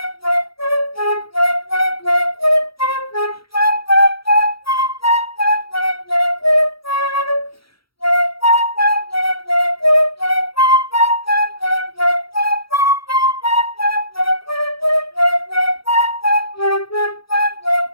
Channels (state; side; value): late; right; 0.75 ms